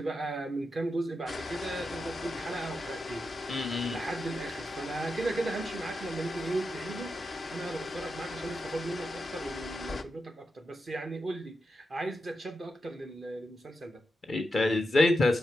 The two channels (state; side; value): normal; both; correlation 0.88